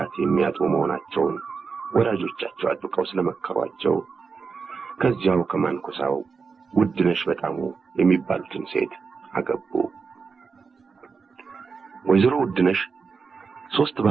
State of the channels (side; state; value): left; quieter; 5.2 dB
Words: የሚያጡ መሆናቸውን ወላጆቻቸው አጥብቀው ስለመከሯቸው ከዚያው ከማንኩሳው ውድነሽ በጣሙ የሚባሉትን ሴት አገቡ። ወይዘሮ ውድነሽ 3